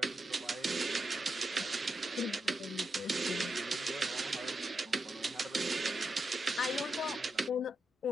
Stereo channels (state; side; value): normal; both; correlation 0.85